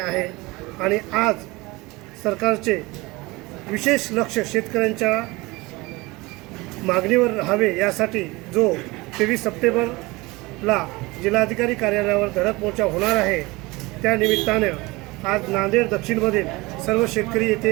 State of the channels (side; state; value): left; quieter; 22.7 dB